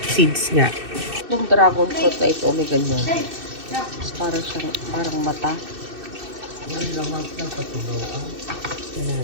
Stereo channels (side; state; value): left; late; 2.6 ms